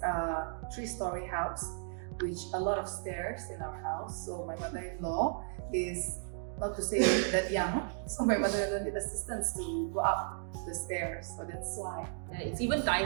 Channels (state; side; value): silent; left; 55 dB below the other